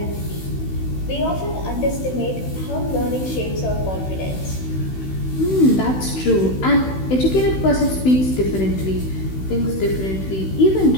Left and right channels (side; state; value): right; late; 16 ms